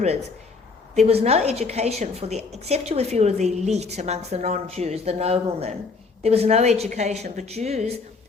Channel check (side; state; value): right; quieter; 4.4 dB